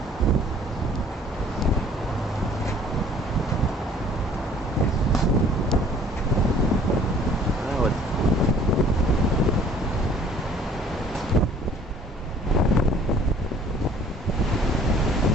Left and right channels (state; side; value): normal; both; correlation 0.54